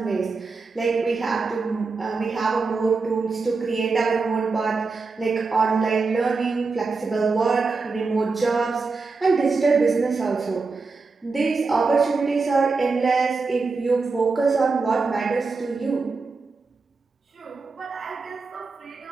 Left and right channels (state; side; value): quieter; left; 4.2 dB